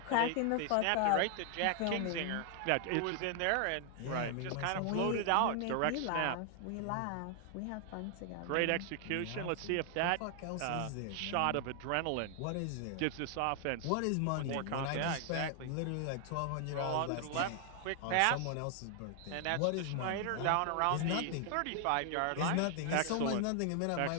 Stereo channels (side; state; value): both; different; correlation 0.00